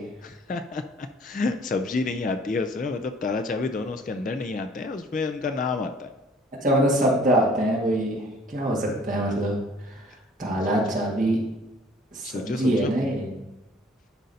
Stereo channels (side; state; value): both; normal; correlation 0.55